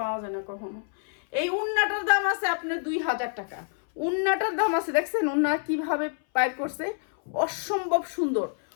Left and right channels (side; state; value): right; silent; 60 dB below the other